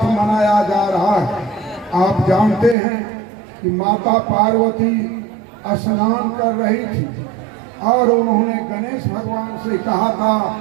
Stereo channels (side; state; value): left; drops out; at 2.8 s